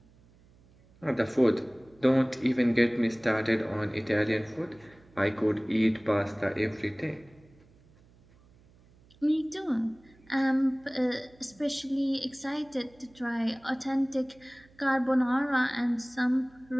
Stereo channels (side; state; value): right; noise; hum, 28 dB below the sound